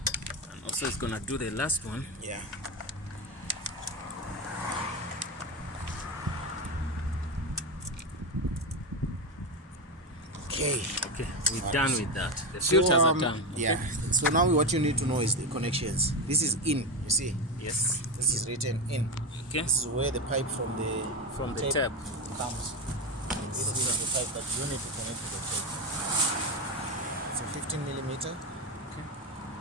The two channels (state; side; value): normal; both; correlation 0.15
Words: And also it's gonna do the last one. Yeah. Okay. Okay, we're done with that. The filters are done. Okay. Yeah. So now what you need to know is the connections. This is in, you see. Yes. This is written in. Okay. This is where the pipe from the tap comes. This is the pipe that you need to connect to the tape. It's a 15 millimeter. Okay.